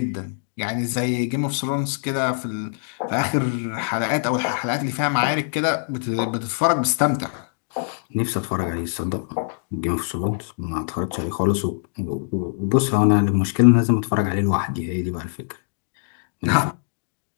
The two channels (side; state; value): right; silent; digital silence